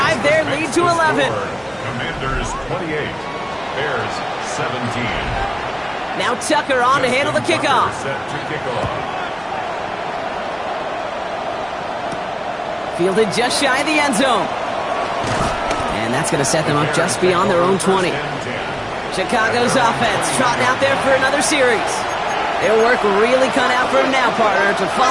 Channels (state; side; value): identical; both; correlation 1.00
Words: their lead to 11. Commanders 28, Bears 17. Now Tucker on to handle the kickoff. Set to kick off. Fielded just shy of the end zone. And that's going to set them up just beyond their own 20. Chicago's offense trotting out there for another series. Their work really cut out for them now, partner, to